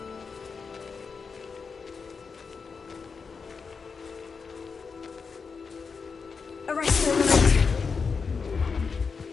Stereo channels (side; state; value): right; quieter; 5.3 dB